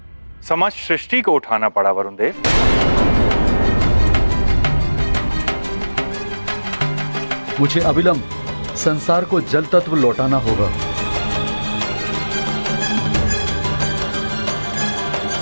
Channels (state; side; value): inverted; both; correlation -1.00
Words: समस्त सृष्टि को उठाना पड़ा वरुण देव। मुझे अविलंब संसार को जल तत्व लौटाना होगा।